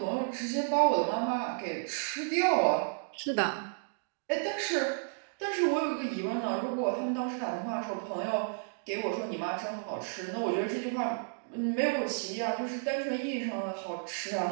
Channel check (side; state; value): left; silent; digital silence